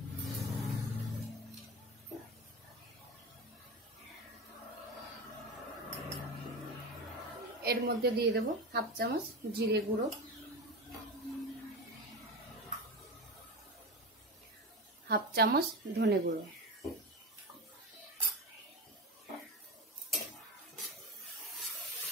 এর মধ্যে দিয়ে দেবো 1/2 চামচ জিরে গুঁড়ো, 1/2 চামচ ধনে গুঁড়ো,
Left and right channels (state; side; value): normal; both; correlation 0.22